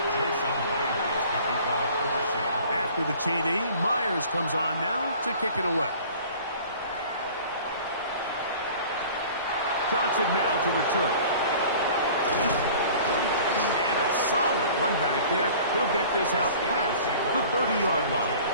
After the TD, Myers comes on now to kick it away. Johnson now to return. And a solid run back there. He'll get this out past the 30-yard line.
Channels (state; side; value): inverted; both; correlation -0.46